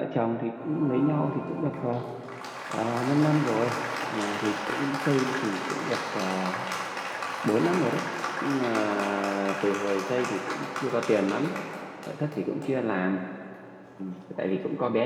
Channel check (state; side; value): identical; both; correlation 1.00